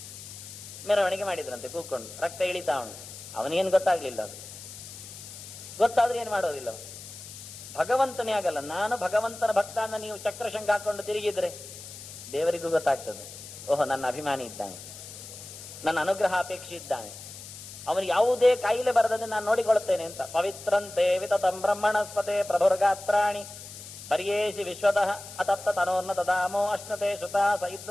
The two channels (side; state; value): left; noise; hiss, 14 dB below the sound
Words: ಮೆರವಣಿಗೆ ಮಾಡಿದ್ರಂತೆ ಕೂತ್ಕೊಂಡು. ರಕ್ತ ಇಳಿತಾ ಉಂಟು. ಅವನಿಗೇನು ಗೊತ್ತಾಗ್ಲಿಲ್ಲ. ಅದು ಗೊತ್ತಾದ್ರೆ ಏನ್ ಮಾಡೋದಿಲ್ಲ. ಭಗವಂತನೇ ಆಗಲ್ಲ. ನಾನು ಭಗವಂತನ ಭಕ್ತ ಅನ್ನ ನೀವು ಚಕ್ರಶಂಖ ಹಾಕೊಂಡು ತಿರುಗಿದ್ರೆ ದೇವರಿಗೂ ಗೊತ್ತಾಗ್ತದೆ. ಓಹೋ ನನ್ನ ಅಭಿಮಾನಿ ಇದ್ದಾನೆ, ನನ್ನ ಅನುಗ್ರಹ ಅಪೇಕ್ಷೆ ಇದ್ದಾನೆ, ಅವನಿಗೆ ಯಾವುದೇ ಕಾಯಿಲೆ ಬರದಂತೆ ನಾನು ನೋಡಿಕೊಳ್ಳುತ್ತೇನೆ ಅಂತ. ಪವಿತ್ರಂತೆ ವಿತತಂ ಬ್ರಹ್ಮಣಸ್ಪತೆ ಪ್ರಭುರ್ಗಾತ್ರಾಣಿ ಪರ್ಯೇಸಿ ವಿಶ್ವತಃ ಅತತ್ತ ತನೋರ್ನ ದಾಮೋ ಅಶ್ನತೆ ಶ್ರುತಾ ಸ